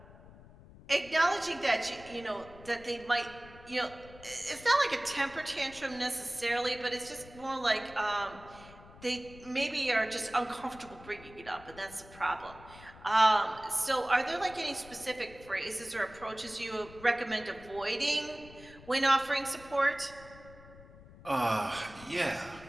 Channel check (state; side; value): noise; left; rumble, 20 dB below the sound